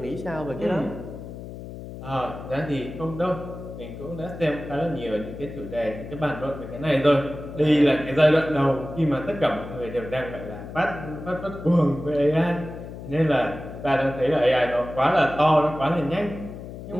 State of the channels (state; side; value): noise; left; hum, 11 dB below the sound